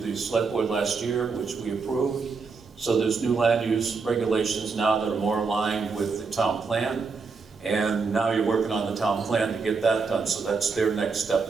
select board last year, which we approved. So there's new land use regulations now that are more aligned with the town plan. And now you're working on the town plan to get that done. So that's their next step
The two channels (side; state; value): left; quieter; 4.7 dB